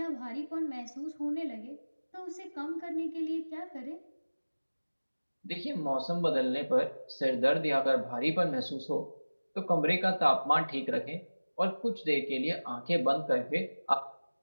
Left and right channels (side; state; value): both; inverted; correlation -1.00